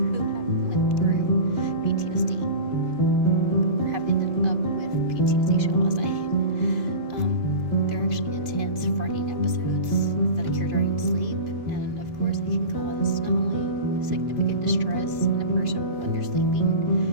have went through PTSD or have ended up with PTSD, shall I say. They're actually intense, frightening episodes that occur during sleep, and of course it can cause not only significant distress in a person when they're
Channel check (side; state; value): left; late; 2.6 ms